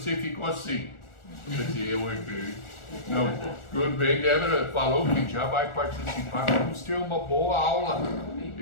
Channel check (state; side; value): late; right; 1.4 ms